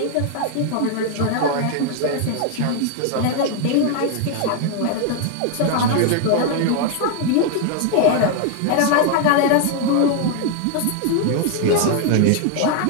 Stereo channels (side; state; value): both; different; correlation 0.00